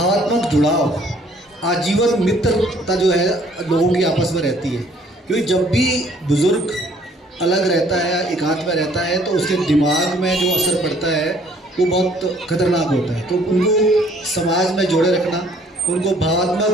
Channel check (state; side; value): normal; both; correlation 0.60